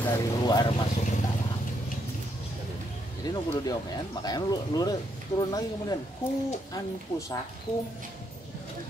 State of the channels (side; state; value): both; normal; correlation 0.76